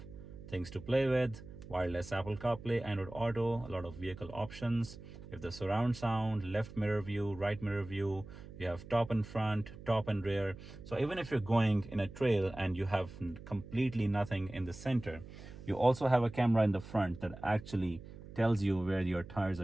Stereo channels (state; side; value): noise; right; hum, 15 dB below the sound